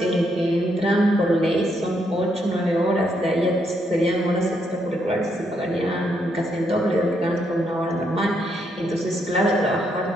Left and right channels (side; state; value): both; normal; correlation 0.76